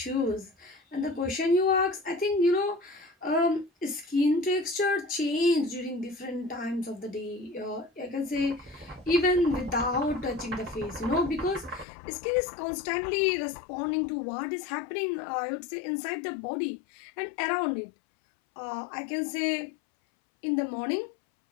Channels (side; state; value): right; drops out; at 11.9 s